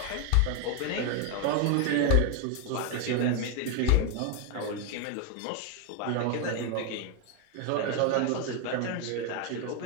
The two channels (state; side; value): different; both; correlation 0.01